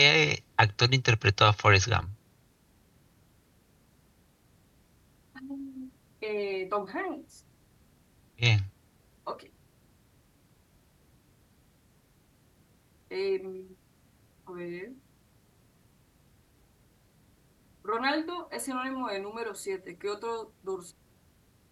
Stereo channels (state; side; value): identical; both; correlation 1.00